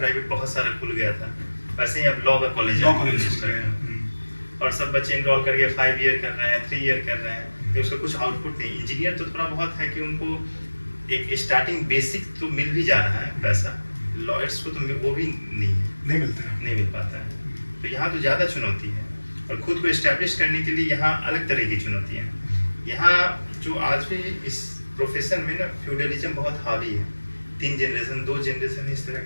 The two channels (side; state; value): both; inverted; correlation -1.00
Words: बहुत सारा खुल गया था, वैसे ही अब लॉ का कॉलेज और सब बच्चे इनरोल करके 5 ईयर कर रहे हैं, 3 ईयर कर रहे हैं, तो उसका कुछ आउटपुट नहीं। इंजीनियर तो थोड़ा बहुत है कि उनको एक स्टार्टिंग बेसिक तो मिल भी जा रहा है पैसा, लॉयर्स को तो वो भी नहीं मिल पाता है। तो यहाँ तो ज़्यादा चुनौती है, और खुद को इस्टेब्लिश करने के लिए यहाँ अलग तरह की चुनौतियाँ हैं। यहाँ जो आज भी इस प्रोफेशन में ना फ्यूडलिज्म बहुत हावी है, 3 जनरेशन 2 जनरेशन इस तरह,